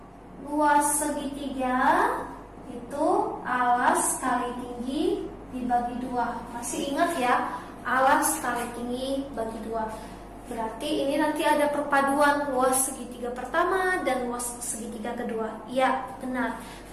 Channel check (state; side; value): identical; both; correlation 1.00